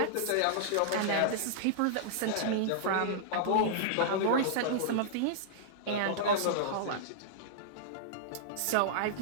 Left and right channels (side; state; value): both; different; correlation -0.02